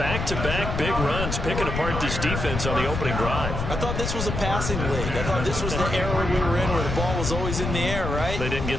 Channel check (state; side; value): noise; left; rumble, 3 dB below the sound